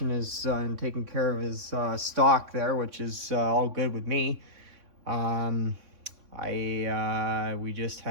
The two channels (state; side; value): late; left; 3.6 ms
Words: his and taking care of his stock there, which is all good with me. We just